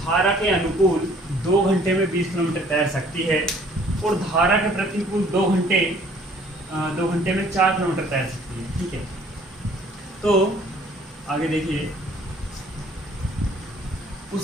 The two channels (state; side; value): normal; both; correlation 0.57